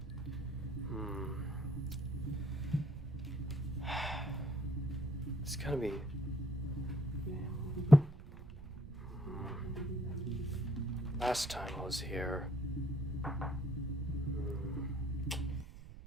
It's gonna be... Last time I was here...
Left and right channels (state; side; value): noise; right; rumble, 14 dB below the sound